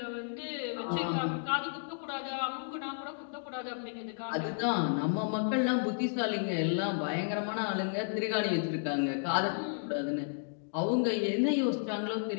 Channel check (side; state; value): right; silent; digital silence